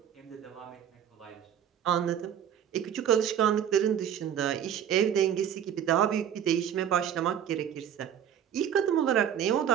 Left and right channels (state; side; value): quieter; left; 9.5 dB